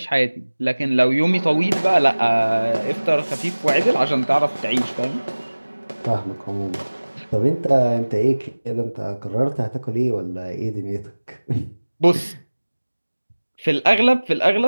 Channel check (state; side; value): inverted; both; correlation -1.00